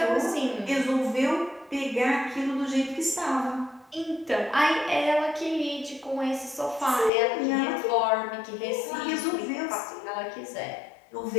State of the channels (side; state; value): right; drops out; at 7.1 s